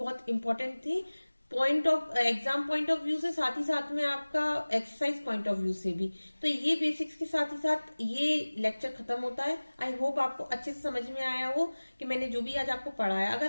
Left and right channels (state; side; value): inverted; both; correlation -1.00